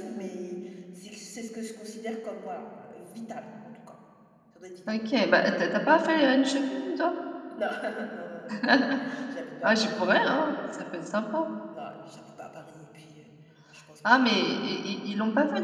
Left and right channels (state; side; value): identical; both; correlation 1.00